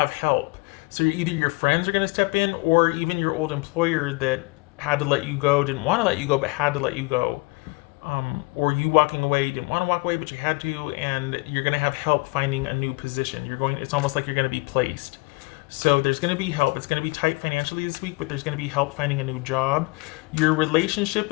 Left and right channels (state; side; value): quieter; right; 27.3 dB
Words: help. So either your friends are going to step in, or even your old employer that had to let you go, didn't want to let you go, but had to let you go. Or you walking away, didn't want to walk away, but you had to, and you're going to have help finding a new position. It's almost like you're going to be placed. So there's going to be help. It's going to be tight financially this week, but there's going to be help finding a new job. Your relationship